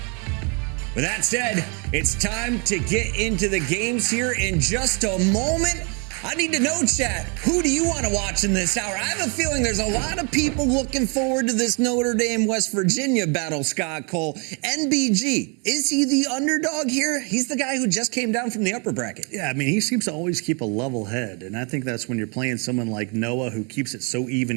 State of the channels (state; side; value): quieter; left; 34.6 dB